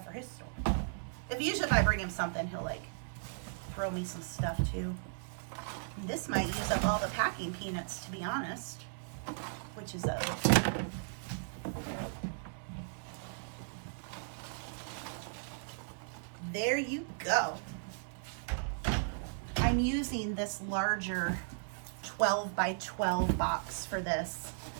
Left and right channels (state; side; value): silent; left; 54 dB below the other